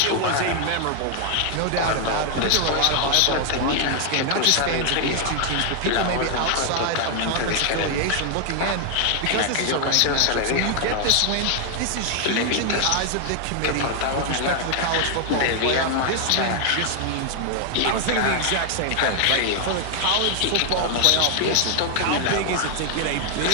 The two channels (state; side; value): different; both; correlation 0.00